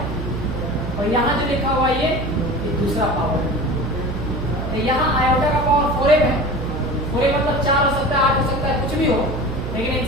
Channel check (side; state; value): right; noise; hum, 5 dB below the sound